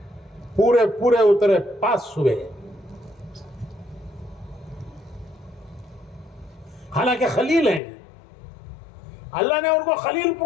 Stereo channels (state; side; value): drops out; right; at 7.8 s